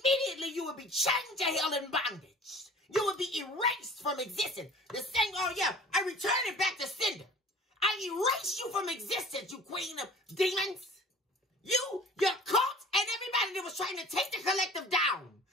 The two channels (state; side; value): normal; both; correlation 0.46